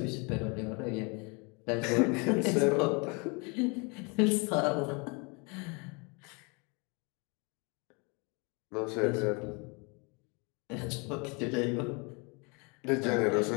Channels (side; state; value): right; quieter; 31.0 dB